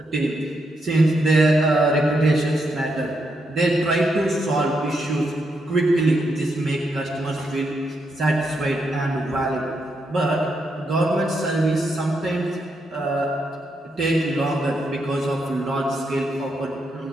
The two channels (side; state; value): both; normal; correlation 0.81